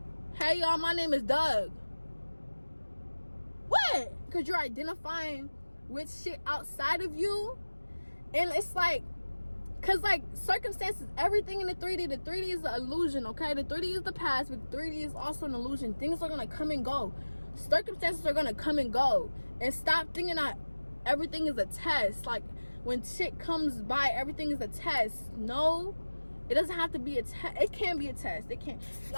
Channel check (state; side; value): inverted; both; correlation -1.00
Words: hey y'all, my name is Doug. What? Because you're identifying with shit outside of you. And it's like, because like circumstances, everything in the 3D is an illusion, okay? The 3D is the past, but 3D is also an illusion. Things are gonna come and go. Circumstances are gonna come and go. And stop thinking that everything is a test. Like, when shit comes by, everything is a test. No, it doesn't have to be a test. It can be a test. It can.